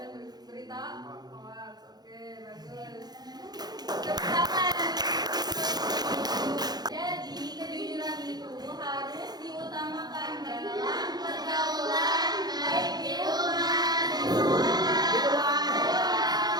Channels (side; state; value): left; late; 0.19 ms